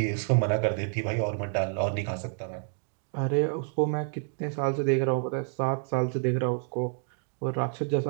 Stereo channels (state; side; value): silent; left; digital silence